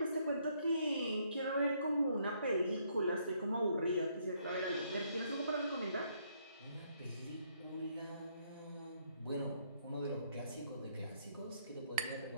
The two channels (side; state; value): both; inverted; correlation -0.71